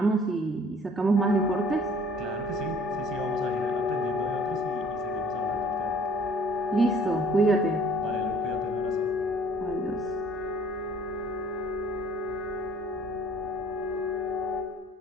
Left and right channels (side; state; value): both; normal; correlation 0.53